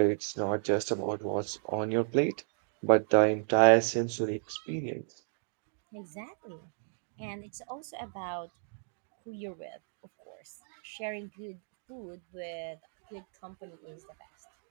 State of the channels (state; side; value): silent; left; digital silence